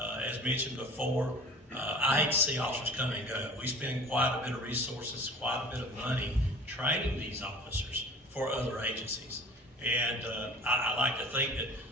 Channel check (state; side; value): normal; both; correlation 0.44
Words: mentioned before, I hate to see officers come and go. We spend quite a bit of resources, quite a bit of money training these officers for other agencies. And I like to think that,